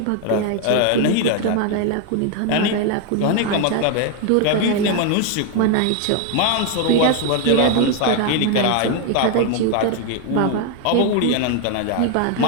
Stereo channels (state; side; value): different; both; correlation 0.01